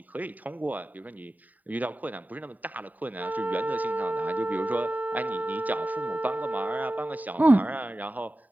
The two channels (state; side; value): late; left; 0.079 ms